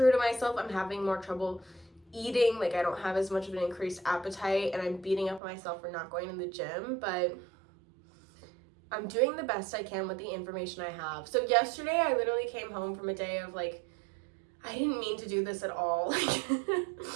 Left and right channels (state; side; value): drops out; left; at 5.4 s